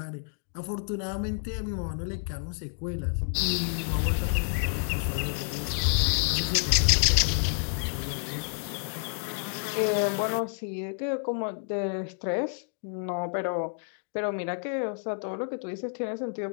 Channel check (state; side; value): silent; right; 58 dB below the other